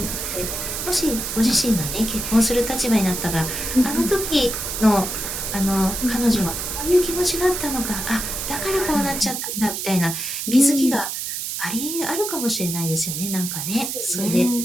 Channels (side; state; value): right; noise; hiss, 4 dB below the sound